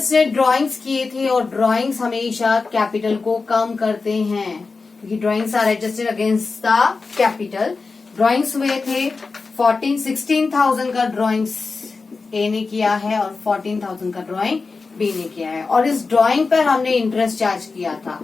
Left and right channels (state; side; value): quieter; right; 4.2 dB